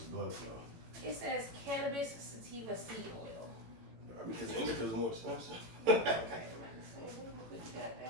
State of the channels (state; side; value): late; left; 18 ms